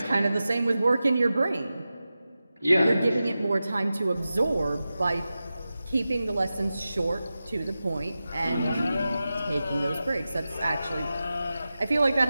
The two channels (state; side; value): inverted; both; correlation -0.93